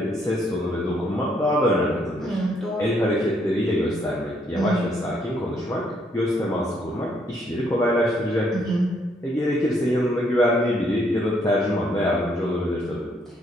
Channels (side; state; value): both; normal; correlation 0.70